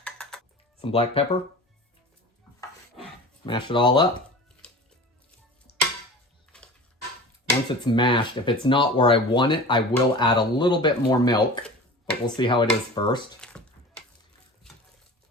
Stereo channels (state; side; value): normal; both; correlation 0.36